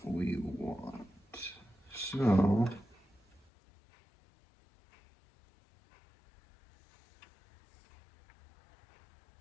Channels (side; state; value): right; drops out; at 3.5 s